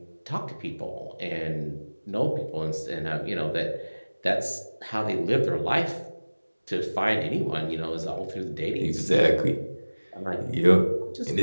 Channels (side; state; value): both; inverted; correlation -1.00